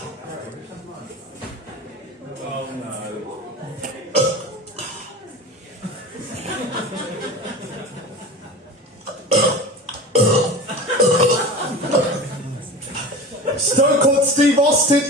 no. Stone Cold Steve Austin,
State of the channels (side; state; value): both; normal; correlation 0.32